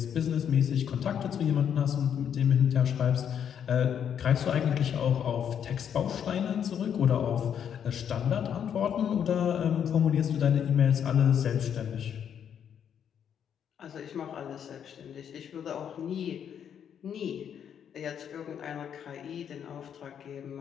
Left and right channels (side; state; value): right; quieter; 8.5 dB